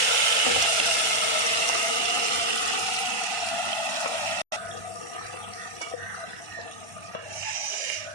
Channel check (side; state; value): left; late; 1.4 ms